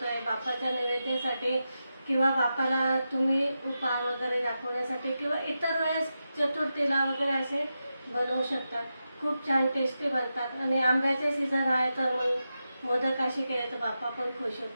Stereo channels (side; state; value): both; inverted; correlation -0.89